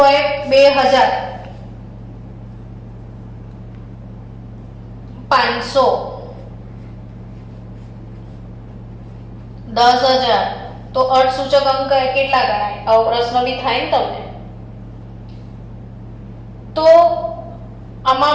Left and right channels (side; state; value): both; identical; correlation 1.00